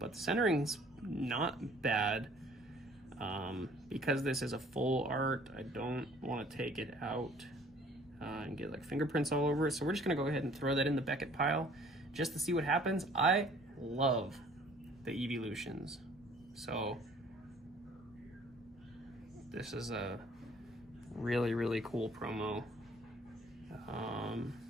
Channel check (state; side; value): normal; both; correlation 0.55